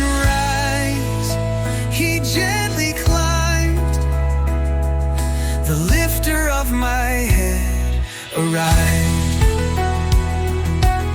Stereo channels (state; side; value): identical; both; correlation 1.00